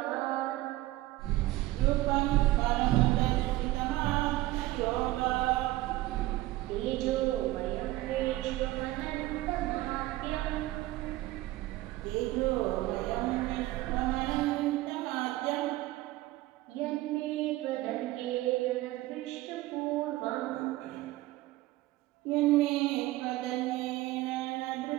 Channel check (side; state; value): left; quieter; 17.3 dB